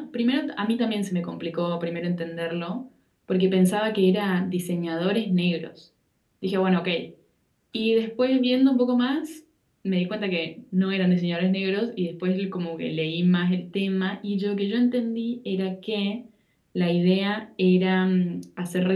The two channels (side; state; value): both; identical; correlation 1.00